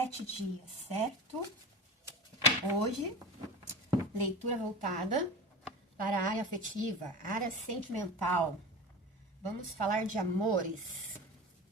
dias, certo? Hoje, leitura voltada para a área afetiva, área sentimental. Vamos falar de amores.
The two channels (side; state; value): both; normal; correlation 0.32